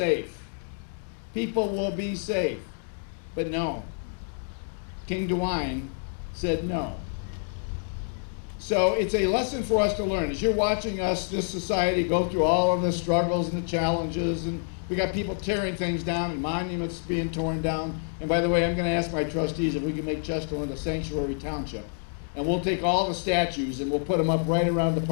People will be safe. But no. King DeWine said no. So it's a lesson for us to learn. As you're watching us, this society, go through all of the struggles and the challenges, and we got people tearing things down and monuments being torn down. And by the way, I'm going to ask my trustees if we can make Chesterland a sanctuary township. And we'll take all the statues and we'll put them up right around the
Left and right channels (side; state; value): right; silent; 60 dB below the other